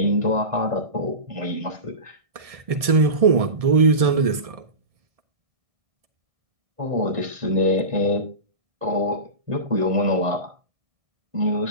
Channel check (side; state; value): left; late; 1.7 ms